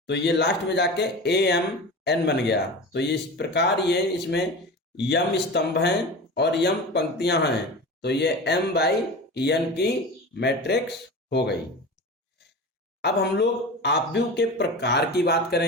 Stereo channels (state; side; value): normal; both; correlation 0.31